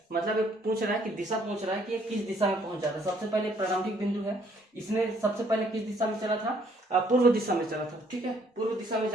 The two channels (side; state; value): both; normal; correlation 0.64